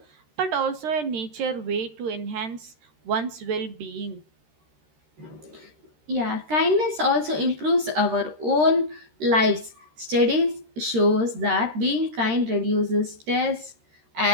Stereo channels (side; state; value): left; late; 13 ms